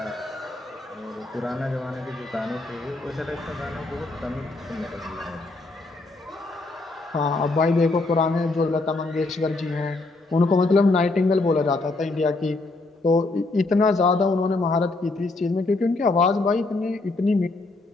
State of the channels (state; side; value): quieter; right; 3.2 dB